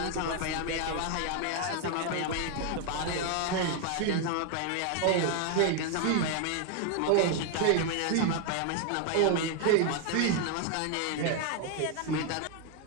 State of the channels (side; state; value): both; different; correlation 0.01